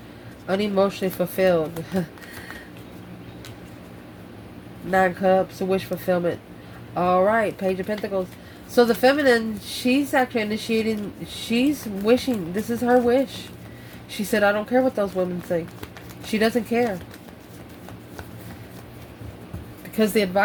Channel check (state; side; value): identical; both; correlation 1.00